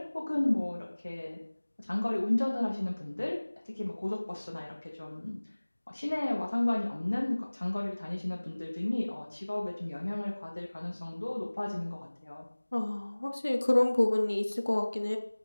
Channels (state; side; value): inverted; both; correlation -1.00